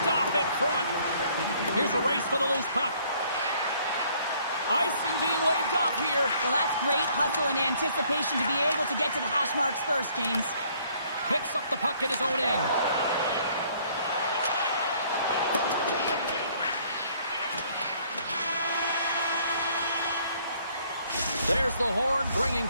off in front. Here's a race for the loose puck. Icing being waved off here. Well, that's great hustle and anticipation to be able to get to the hash marks first, James. Picks up the puck in his own end. There's the horn, bringing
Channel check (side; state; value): both; inverted; correlation -0.62